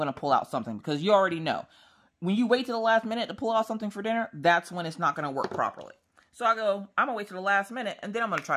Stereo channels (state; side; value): identical; both; correlation 1.00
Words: to pull out something because you already know. When you wait till the last minute to pull out something for dinner, that's when it's not going to work properly. So I go, I'm going to wait till the last minute, and then I'm going to